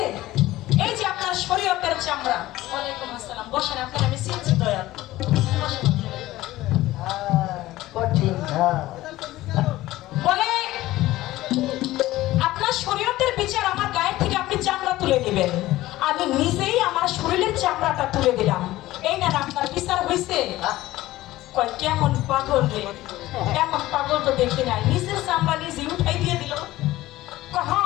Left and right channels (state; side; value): quieter; right; 16.6 dB